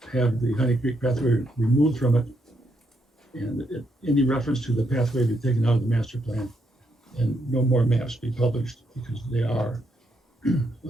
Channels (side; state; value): both; normal; correlation 0.77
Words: have the Honey Creek pathway removed from it, And any reference to the pathway be taken out of the master plan, and no more maps be published, because they are an